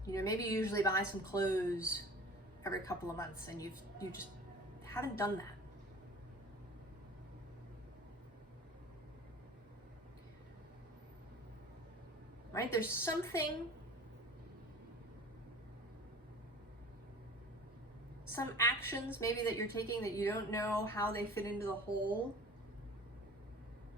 You know, maybe you usually buy some clothes every couple of months, and you just haven't done that. Right? There's something, some actions maybe that you're taking that you don't know how they fit into the whole,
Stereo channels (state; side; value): normal; both; correlation 0.42